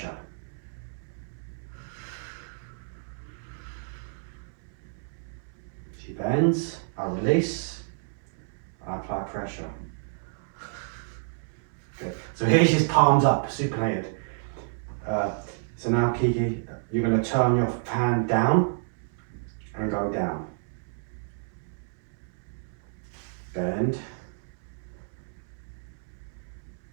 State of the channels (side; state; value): left; silent; 58 dB below the other